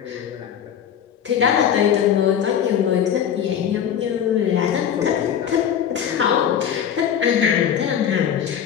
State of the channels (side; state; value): right; quieter; 8.9 dB